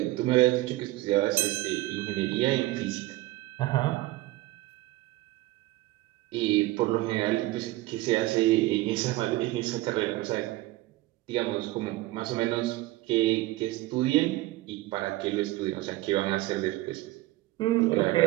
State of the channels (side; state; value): left; quieter; 18.1 dB